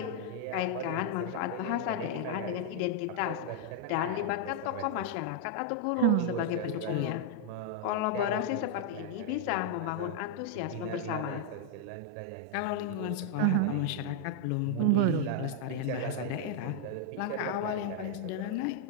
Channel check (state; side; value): different; both; correlation 0.00